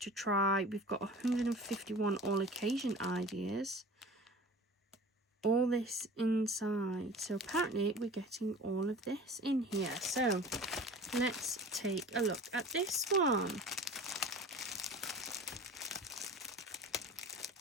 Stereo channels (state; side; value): normal; both; correlation 0.40